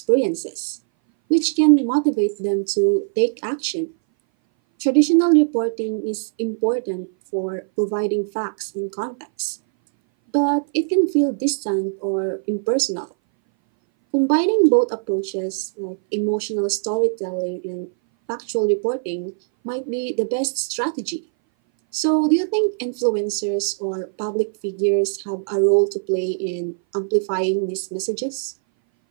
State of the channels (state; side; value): silent; left; 60 dB below the other